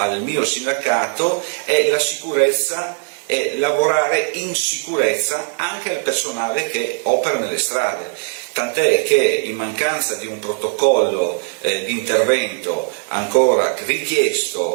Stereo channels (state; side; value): silent; left; 64 dB below the other